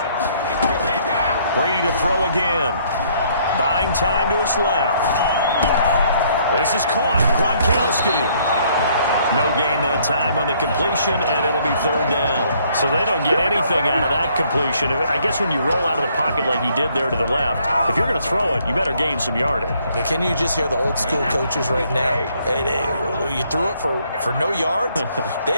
Brady to throw again. Buying time to his left. This is caught. Gronkowski. No gain that time on the completion, and it'll be 3rd down. So they don't get anything out of that completion. I guess when you roll out of the pocket like he did there to the left, if you're going to throw it, you better gain some yardage. Now, can you just hear the old school coaches right now? You threw it for no yards?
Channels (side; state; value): both; inverted; correlation -0.65